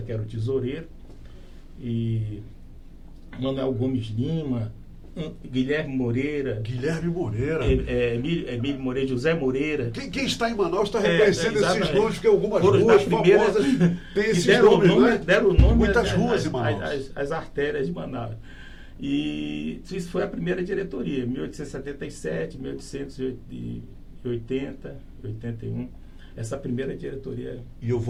que era o tesoureiro, e Manuel Gomes Lima, Guilherme Moreira, Emílio Moreira, José Moreira. Quem está em Manaus está reconhecendo esses nomes, porque algumas ruas famosas têm esses nomes, né? Deram nome muitas ruas em Manaus. As artérias de Manaus. E isso foi a primeira diretoria, 1877, 1880, 81. Essa primeira diretoria. E eu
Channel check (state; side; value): identical; both; correlation 1.00